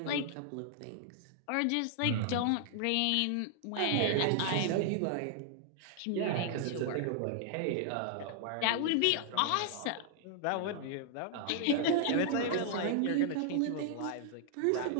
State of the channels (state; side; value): different; both; correlation -0.01